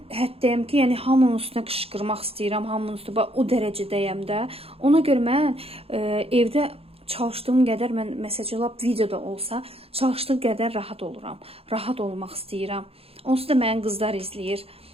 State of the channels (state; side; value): late; left; 0.28 ms